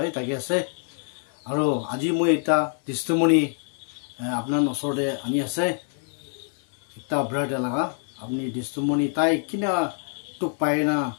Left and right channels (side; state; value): right; silent; 55 dB below the other